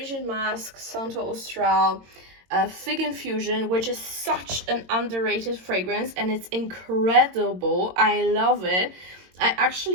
Mask, Santo Austral, Fig Infusion, which is such an underrated fragrance and it's incredible. I love it. I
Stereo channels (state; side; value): late; left; 22 ms